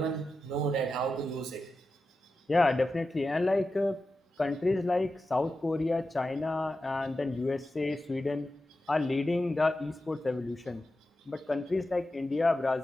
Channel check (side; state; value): both; normal; correlation 0.92